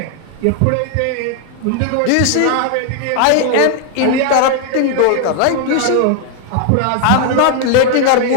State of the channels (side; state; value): both; different; correlation 0.00